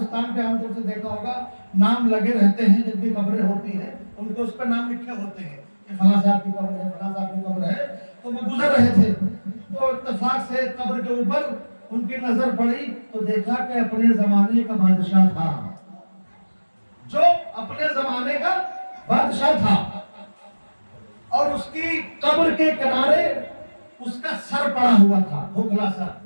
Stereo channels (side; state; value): both; inverted; correlation -1.00